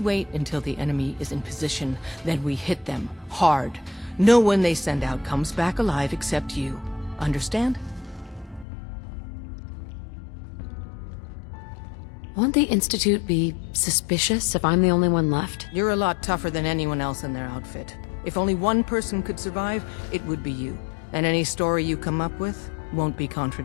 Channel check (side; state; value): right; drops out; at 8.7 s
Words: until the enemy is in position, then we hit them hard. No one they send out comes back alive except you. Understand? Won't the Institute be suspicious if I'm the only one left? You're a lot tougher than anyone else in their outfit. If only one person could survive, it would be you. And any story you come up with won't be